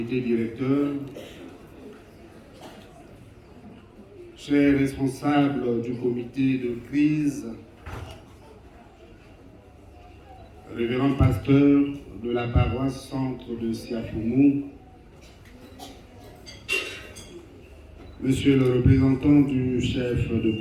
directeur, chers responsables du comité de crise, révérend pasteur de la paroisse centre de Siafoumou, monsieur le représentant du chef de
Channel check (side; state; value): both; identical; correlation 1.00